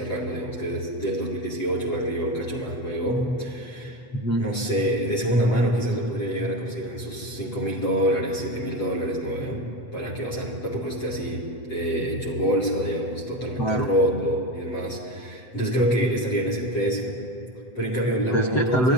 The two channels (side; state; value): right; late; 8.0 ms